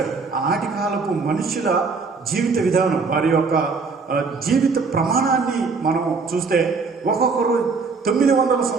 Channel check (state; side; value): quieter; left; 4.6 dB